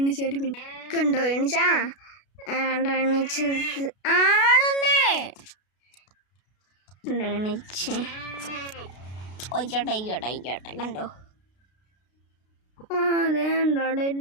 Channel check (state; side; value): late; right; 32 ms